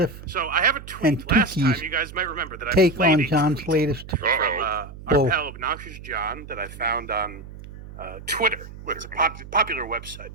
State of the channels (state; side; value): noise; right; hum, 15 dB below the sound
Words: So I have a tweet. and Last time, Tookie's you guys might remember that I take played on a John's tweet latest from our bull. pal Obnoxious John that I found on Twitter. It's a popular website.